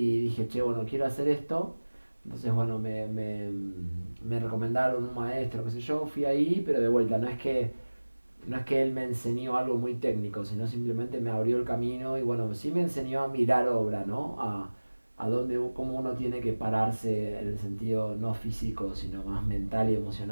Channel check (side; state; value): both; inverted; correlation -1.00